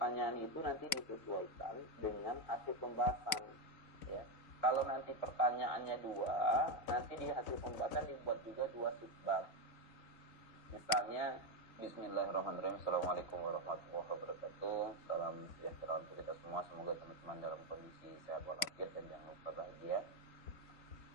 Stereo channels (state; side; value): late; right; 3.9 ms